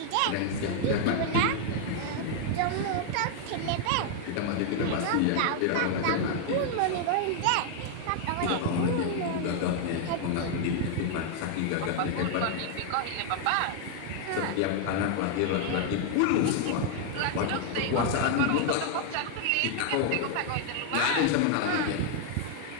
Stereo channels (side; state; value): both; different; correlation 0.00